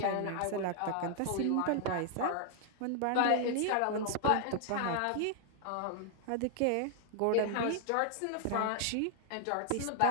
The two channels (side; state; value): both; different; correlation 0.00